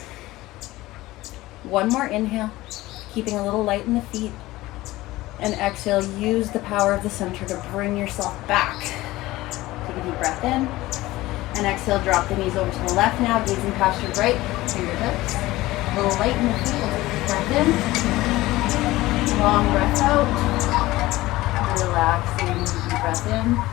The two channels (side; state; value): right; quieter; 18.1 dB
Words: One more inhale. Keeping a little light in the feet. And exhale. Use the power of the center to bring yourself back. Take a deep breath in. And exhale, drop the knees over to the left now, gazing past your right fingertips. A little light in the feet, breath in. Long breath out. Relaxing, deep breath in.